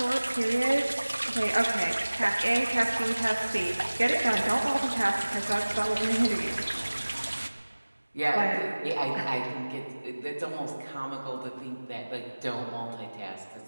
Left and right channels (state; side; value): inverted; both; correlation -1.00